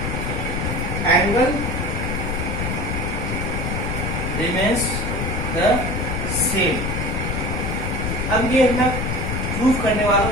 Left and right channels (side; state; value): left; noise; rumble, 1 dB below the sound